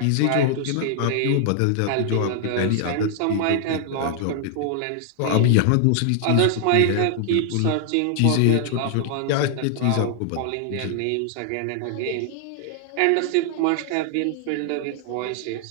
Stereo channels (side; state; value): both; different; correlation -0.01